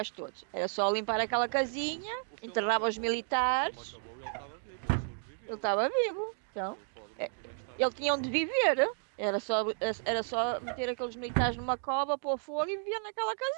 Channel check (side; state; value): left; silent; 56 dB below the other